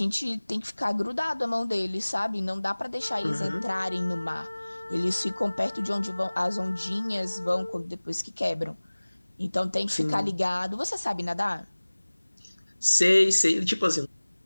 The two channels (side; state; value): both; inverted; correlation -1.00